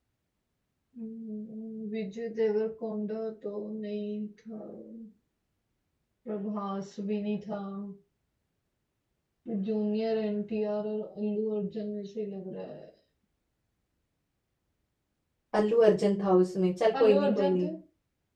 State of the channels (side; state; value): both; identical; correlation 1.00